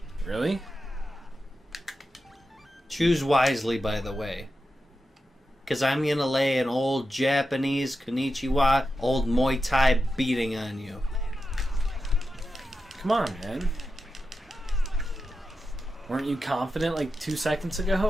Really? Choose wisely, by the way. Because I'm going to lay an old Japanese konnichiwa, old Muay Thai beating on you. Come on, man. Weren't you confident like 2 seconds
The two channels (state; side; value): normal; both; correlation 0.90